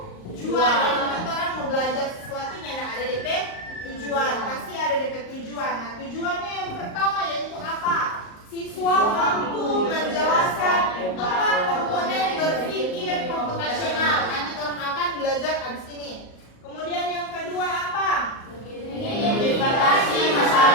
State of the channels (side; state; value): right; late; 38 ms